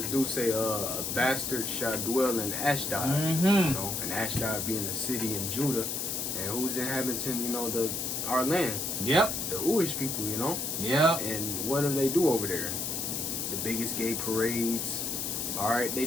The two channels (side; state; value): left; noise; hiss, 2 dB below the sound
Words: do say a bastard shall dwell in Ashdod, you know, and Ashdod being a city in Judah, and who's inhabiting, you know, our land. Yep. The Jewish people, you know. Yep. And what do they do over there? The biggest gay parades. All right, they